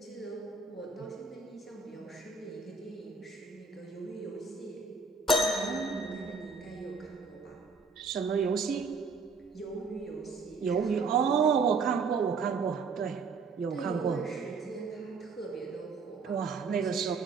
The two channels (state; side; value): quieter; left; 4.6 dB